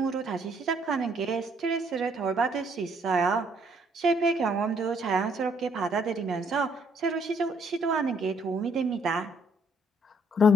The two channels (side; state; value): both; normal; correlation 0.67